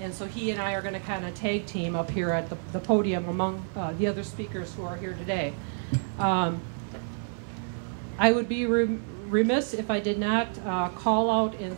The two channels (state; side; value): silent; left; 59 dB below the other